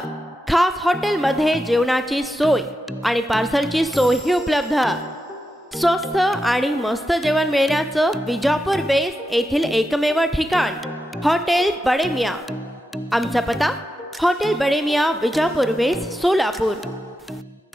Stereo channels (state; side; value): normal; both; correlation 0.88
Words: खास हॉटेल मध्ये जेवणाची सोय आणि पार्सलची सोयही उपलब्ध। स्वस्त आणि मस्त जेवण मिळण्याचं विजापूर वेस्ट येथील एकमेव ठिकाण हॉटेल बडे मियाँ। आमचा पत्ता हॉटेल बडे मियाँ, विजापूर वेस्ट, सोलापूर।